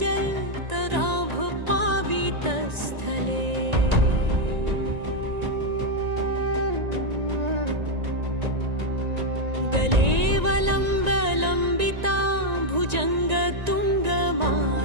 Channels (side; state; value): left; late; 1.9 ms